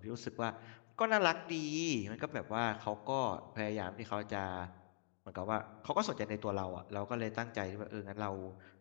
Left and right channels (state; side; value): silent; right; digital silence